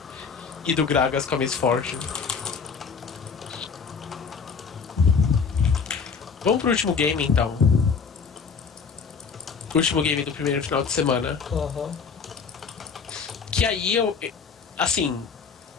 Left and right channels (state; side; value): quieter; right; 5.6 dB